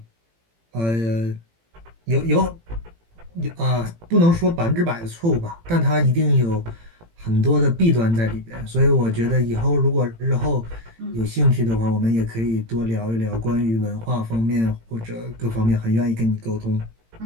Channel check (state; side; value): late; left; 18 ms